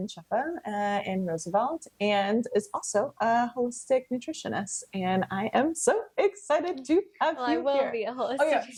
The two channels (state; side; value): identical; both; correlation 1.00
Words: Shefa in Roosevelt, and is also a holistic nutritionist. And I am so excited to have you I will here. be a holistic